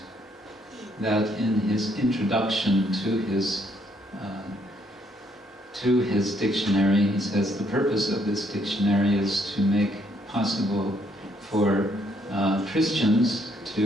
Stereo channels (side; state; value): both; normal; correlation 0.70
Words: that in his introduction to his dictionary, he says the purpose of this dictionary is to make possible for Christians